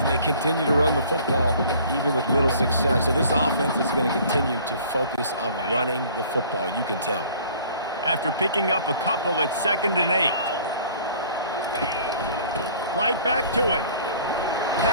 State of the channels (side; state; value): both; inverted; correlation -0.51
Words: they continue to run the football even with little success. So this offense is going to continue to focus on running the football. You can tell. After picking up a couple, it's 2nd and 8. Right back to it.